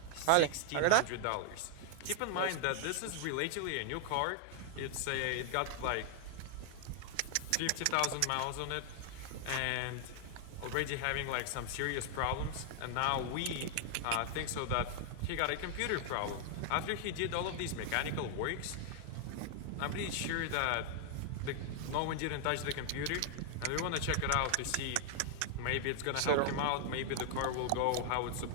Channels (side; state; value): both; different; correlation 0.00